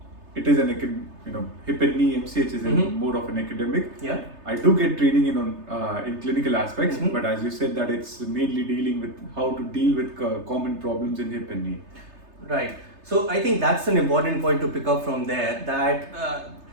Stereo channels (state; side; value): late; left; 3.3 ms